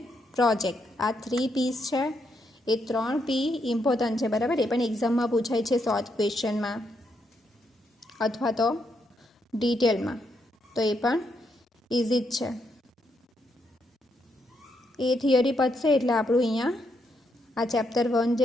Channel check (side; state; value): both; normal; correlation 0.78